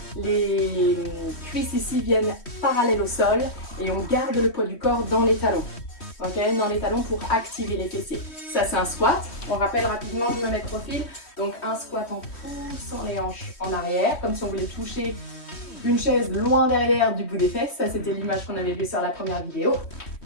les cuisses ici viennent parallèles au sol et on garde le poids du corps dans les talons. Okay, dans les talons pour activer les fessiers. Ça c'est un squat. On rappelle rapidement, je me mets de profil. Donc un squat en poussant les hanches en arrière, comme si on voulait toucher une chaise loin derrière du bout des fesses. Ça c'était l'image qu'on avait vue sur la première vidéo.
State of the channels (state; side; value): late; right; 3.1 ms